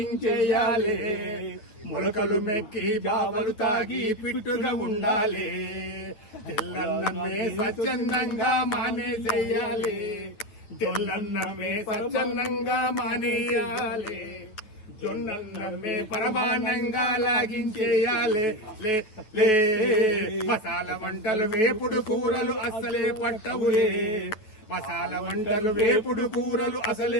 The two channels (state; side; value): late; right; 9.4 ms